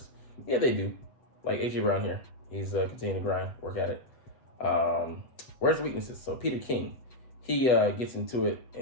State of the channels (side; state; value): right; late; 7.9 ms